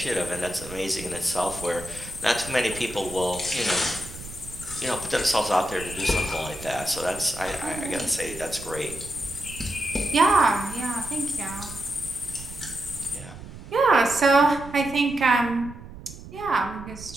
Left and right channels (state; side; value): noise; right; rumble, 14 dB below the sound